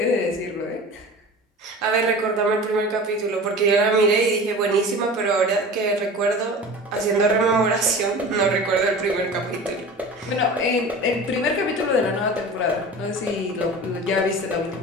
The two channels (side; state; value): both; normal; correlation 0.36